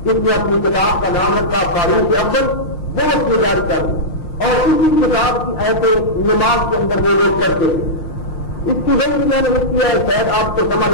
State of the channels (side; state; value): right; late; 6.4 ms